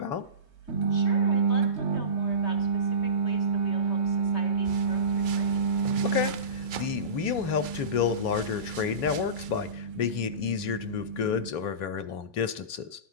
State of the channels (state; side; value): late; right; 3.2 ms